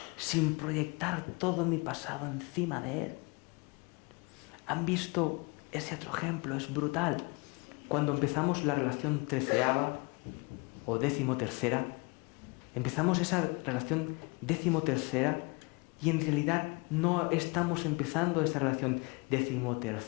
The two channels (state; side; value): quieter; right; 29.1 dB